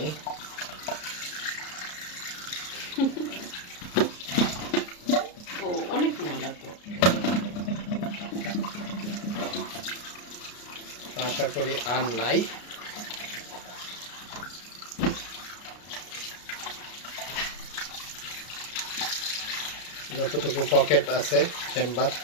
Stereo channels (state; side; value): late; right; 33 ms